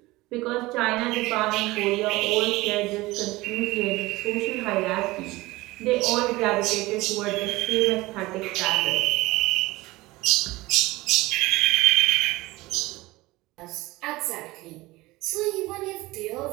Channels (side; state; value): left; quieter; 20.2 dB